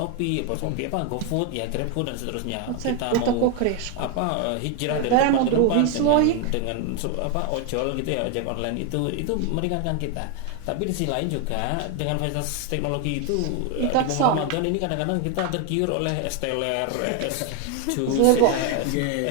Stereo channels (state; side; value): different; both; correlation 0.01